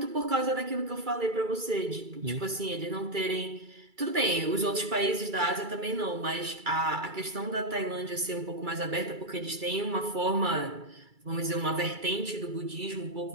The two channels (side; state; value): left; late; 2.3 ms